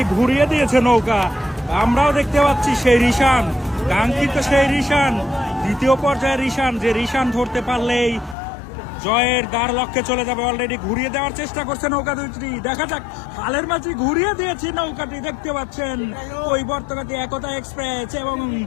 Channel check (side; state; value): right; drops out; at 8.3 s